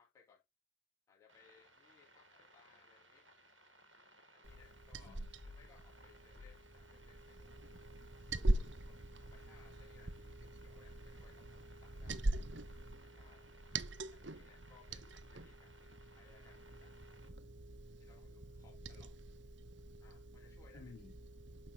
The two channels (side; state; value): both; normal; correlation 0.85